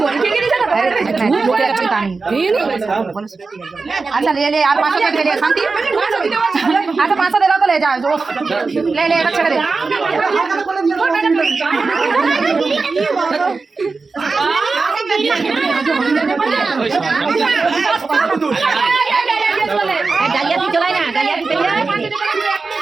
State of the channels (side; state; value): left; quieter; 4.2 dB